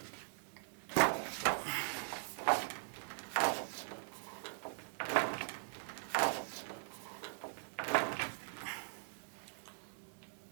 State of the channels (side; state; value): left; silent; digital silence